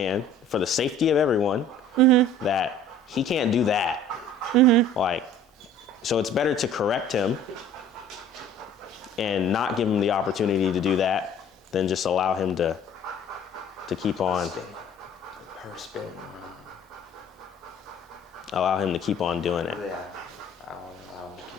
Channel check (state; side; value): normal; both; correlation 0.50